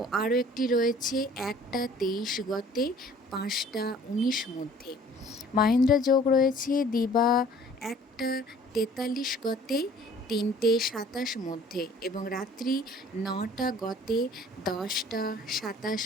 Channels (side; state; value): both; normal; correlation 0.52